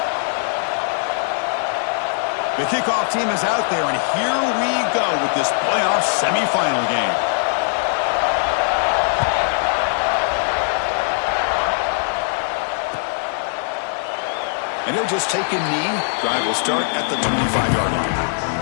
The kickoff team is out there, and here we go with this playoff semifinal game. And he'll just take a knee. Drive will start at the 25-yard line.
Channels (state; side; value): silent; right; digital silence